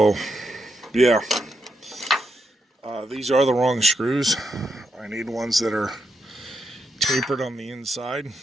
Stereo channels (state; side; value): normal; both; correlation 0.82